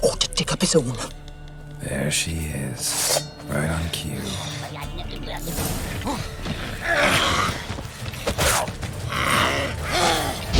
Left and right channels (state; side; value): identical; both; correlation 1.00